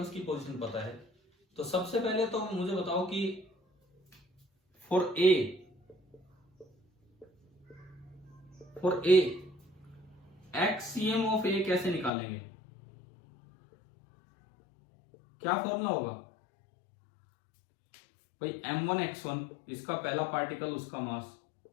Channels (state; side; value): drops out; right; at 12.1 s